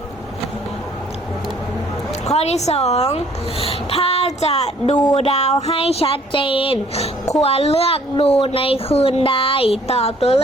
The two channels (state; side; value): normal; both; correlation 0.59